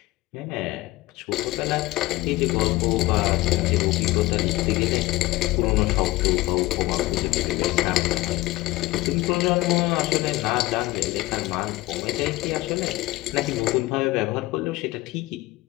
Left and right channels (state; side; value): quieter; right; 19.0 dB